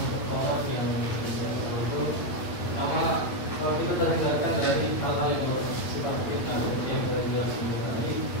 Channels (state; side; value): late; right; 8.8 ms